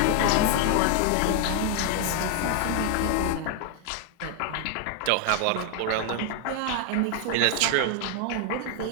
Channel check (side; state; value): both; different; correlation 0.00